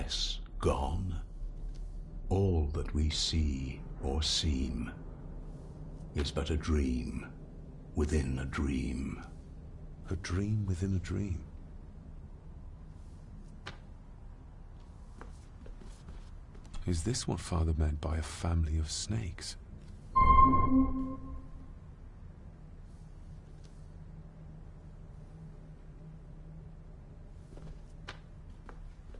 gone? All that we see or seem is but a dream within a dream. A dream within a dream. Is this what Father meant by a family of snakes?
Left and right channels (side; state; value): both; identical; correlation 1.00